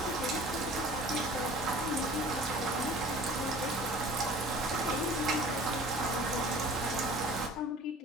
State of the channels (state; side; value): normal; both; correlation 0.46